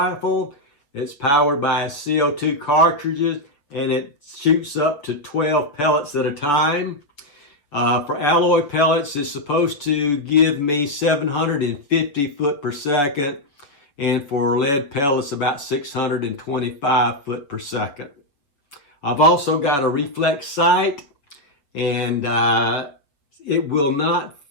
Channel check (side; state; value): right; late; 6.8 ms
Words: It's powered by CO2 cartridges and it shoots up to 12 pellets at a time. For alloy pellets, it's supposed to give me 750 foot per second. And for lead pellets, about 625 foot per second. I've also got a reflex sight and it will not